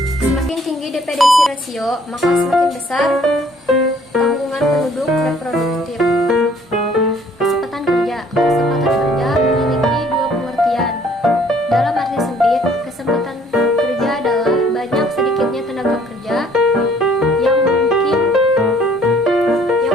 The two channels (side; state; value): both; normal; correlation 0.59